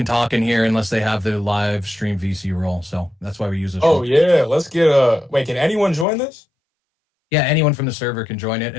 talk in here unless they have the live stream VC role. So that's why we use this Oh role. yeah, let's get wait, can anyone join this? Yeah, anyone from the server can join it,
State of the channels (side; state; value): right; drops out; at 6.1 s